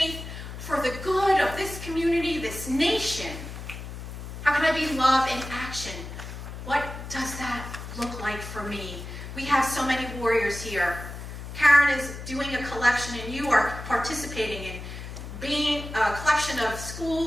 for the good of this community, this nation? How can I be love in action? What does that look like for me? We have so many warriors here. Karen is doing a collection, and you are participating in being a collection of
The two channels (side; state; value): left; noise; hum, 10 dB below the sound